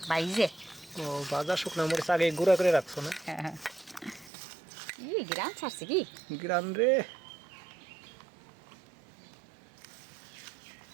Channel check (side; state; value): left; drops out; at 4.3 s